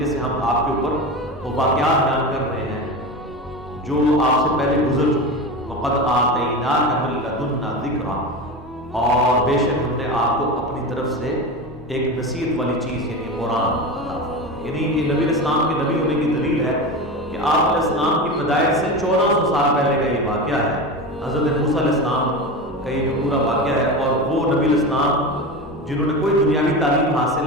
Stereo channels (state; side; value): normal; both; correlation 0.24